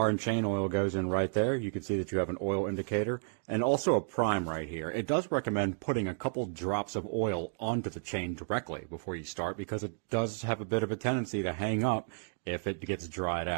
and chain oil goes in right there. You can see that you have an oil indicator and also a prime right here. It does recommend putting a couple drops of oil onto the chain directly before you start because it does have a bit of a tendency to hang up if it gets dried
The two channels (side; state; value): left; silent; digital silence